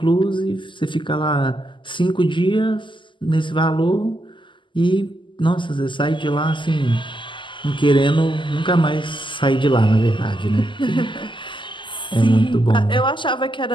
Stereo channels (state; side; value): late; right; 0.24 ms